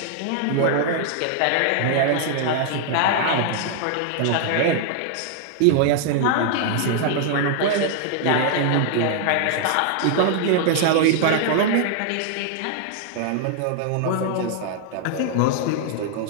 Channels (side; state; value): both; different; correlation 0.00